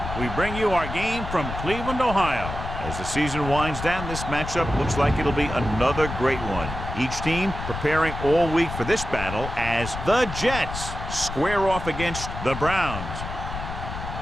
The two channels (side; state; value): left; noise; rumble, 7 dB below the sound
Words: we bring you our game from Cleveland, Ohio. As the season winds down, this matchup looks like it'll be another great one. Each team preparing all week for this battle as the Jets square off against the Browns.